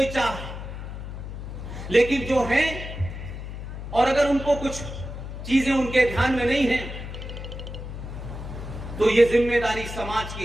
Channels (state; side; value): noise; left; hum, 8 dB below the sound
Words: चाह है। लेकिन जो है, और अगर उनको कुछ चीजें उनके ध्यान में नहीं है, तो यह जिम्मेदारी समाज